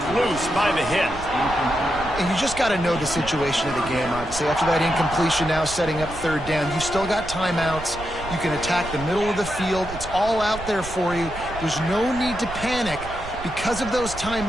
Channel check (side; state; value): right; noise; rumble, 12 dB below the sound